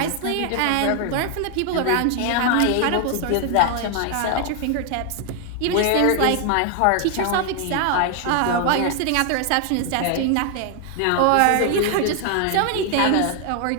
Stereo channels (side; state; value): both; different; correlation 0.00